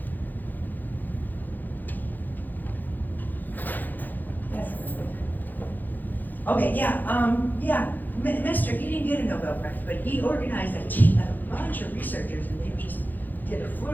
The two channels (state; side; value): late; right; 0.086 ms